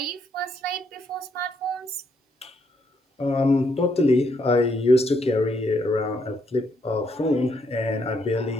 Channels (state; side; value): normal; both; correlation 0.74